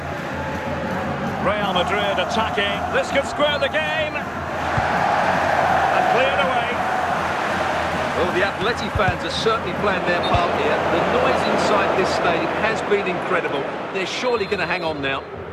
Real Madrid attacking. This could square the game. And cleared away. Well, the Atleti fans are certainly playing their part here. The noise inside this stadium has been incredible. They're surely going to hang on now.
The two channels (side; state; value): both; identical; correlation 1.00